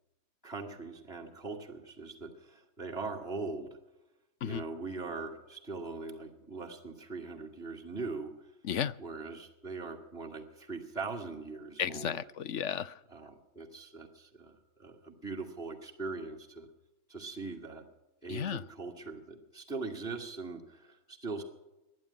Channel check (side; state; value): right; late; 3.5 ms